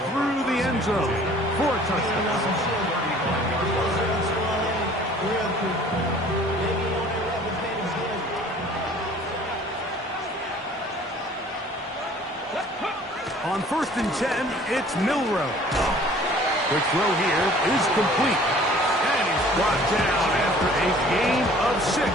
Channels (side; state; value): both; normal; correlation 0.51